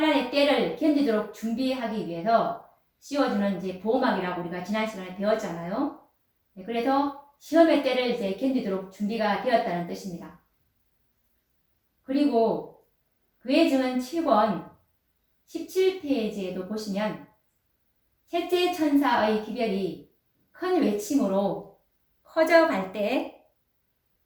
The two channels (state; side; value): identical; both; correlation 1.00